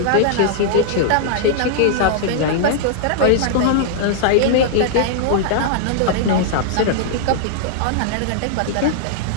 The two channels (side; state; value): both; different; correlation -0.01